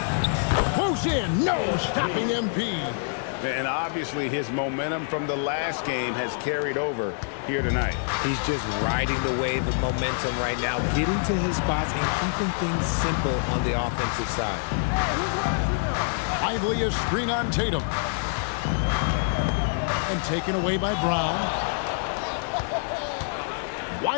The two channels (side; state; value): right; silent; digital silence